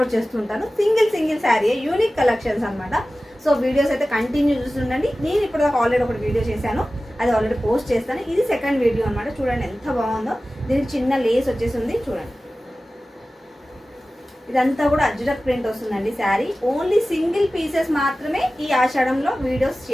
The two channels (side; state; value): both; normal; correlation 0.96